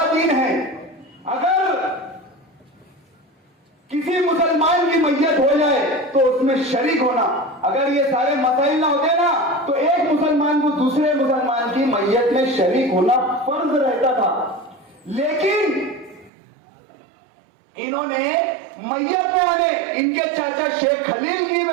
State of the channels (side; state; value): left; drops out; at 16.3 s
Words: दीन है, अगर किसी मुसलमान की मैयत हो जाए तो उसमें शरीक होना, अगर ये सारे मसाइल ना होते ना तो एक मुसलमान को दूसरे मुसलमान की मैयत में शरीक होना फर्ज रहता था। लेकिन इन्होंने मैयत में आने, इनके चाचा शेख खलील